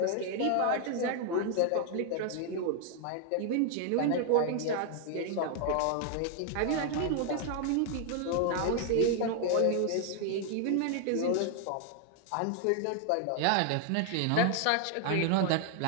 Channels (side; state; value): both; different; correlation 0.00